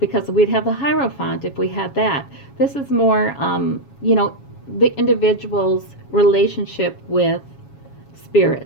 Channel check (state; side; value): late; right; 7.2 ms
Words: we'd have the Hierophant if we had that. This is more, the individual's relationship with